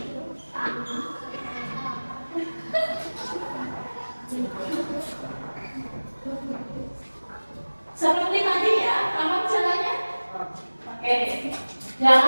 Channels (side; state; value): both; inverted; correlation -1.00